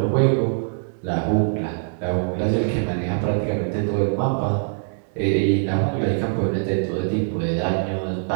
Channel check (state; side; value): silent; left; digital silence